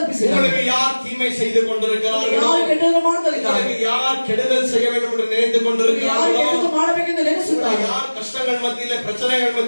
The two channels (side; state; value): both; inverted; correlation -1.00